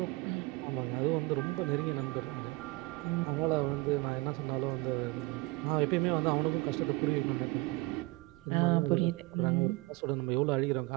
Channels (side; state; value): left; quieter; 23.3 dB